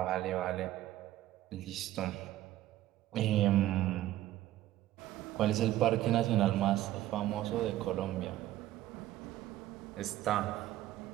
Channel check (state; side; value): quieter; left; 14.3 dB